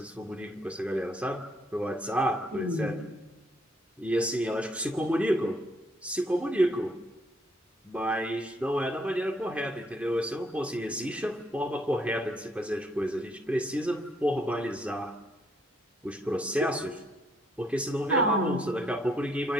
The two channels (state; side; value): normal; both; correlation 0.70